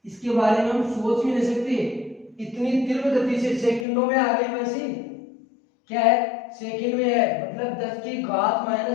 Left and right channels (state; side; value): drops out; right; at 3.9 s